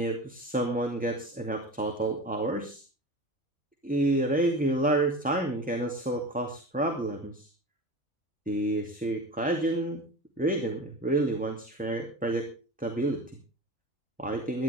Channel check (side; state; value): both; normal; correlation 0.32